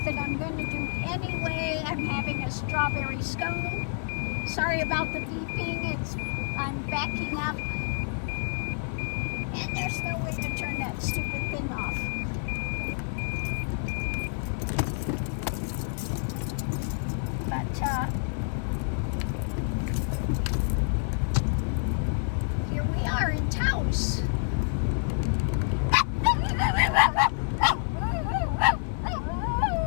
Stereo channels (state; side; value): silent; right; digital silence